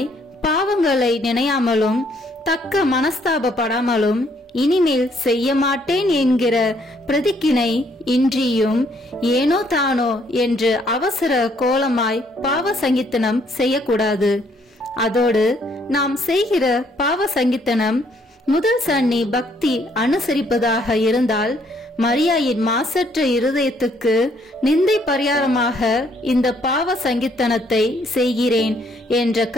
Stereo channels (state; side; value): normal; both; correlation 0.67